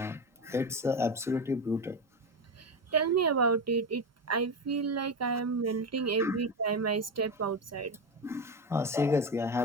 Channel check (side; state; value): both; normal; correlation 0.16